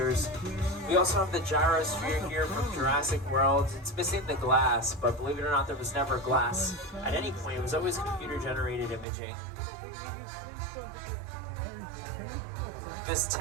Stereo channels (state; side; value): drops out; left; at 9.1 s